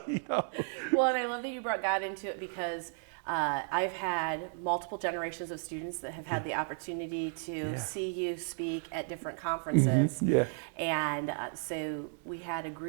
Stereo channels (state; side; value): silent; left; 55 dB below the other